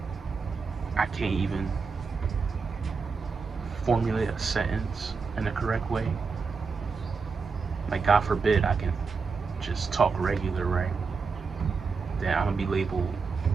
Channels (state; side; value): quieter; left; 5.0 dB